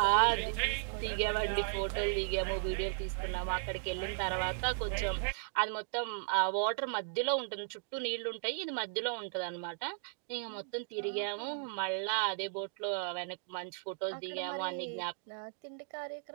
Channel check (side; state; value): left; silent; digital silence